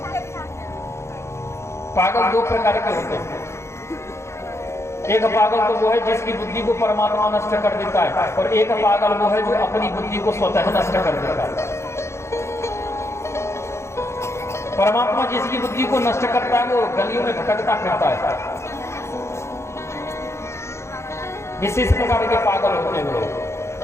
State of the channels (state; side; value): late; right; 0.13 ms